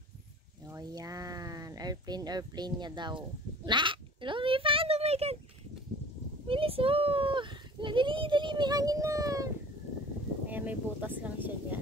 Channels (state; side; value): normal; both; correlation 0.44